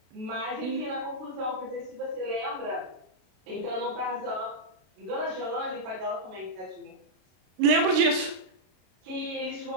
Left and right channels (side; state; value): left; late; 32 ms